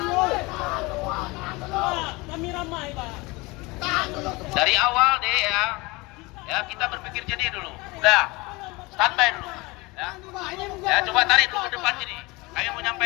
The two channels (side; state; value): right; quieter; 24.1 dB